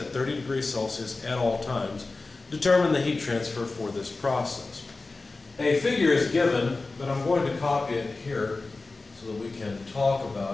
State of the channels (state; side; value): quieter; right; 3.5 dB